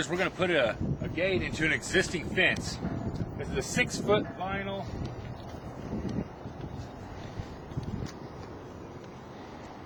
we're going to put a gate into an existing fence. This is a 6-foot vinyl.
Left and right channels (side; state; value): both; identical; correlation 1.00